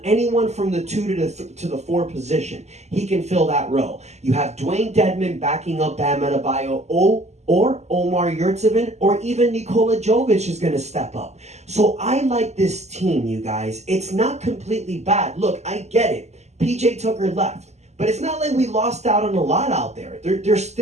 from the 2 to the 4 position. He can fill that role. You have Dwayne Dedmon backing up Bam Adebayo, or Omar Yurtseven, or even Nikola Jovic is going to step up. So I like this team, you guys. It's not completely bad. Look, I get it. PJ Tucker left. But it's not like we lost out on a lot out there. There's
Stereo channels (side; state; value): left; late; 0.33 ms